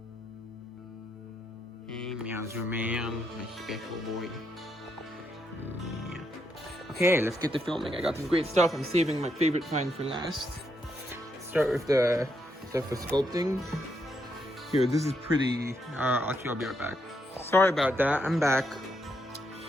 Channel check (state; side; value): normal; both; correlation 0.78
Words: Hey, Meowser Man, my special boy. Yeah. Okay, let's get to filming. I got some great stuff. I'm saving my favorite find for last. Start with the stuff for sculpting. Here, this is pretty. Actually, I'll be right back. Sorry about that. I'm back.